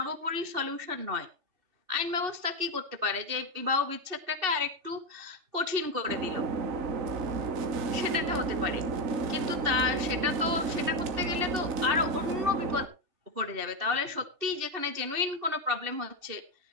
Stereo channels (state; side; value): late; left; 2.7 ms